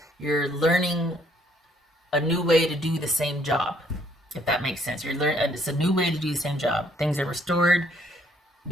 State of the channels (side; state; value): both; normal; correlation 0.66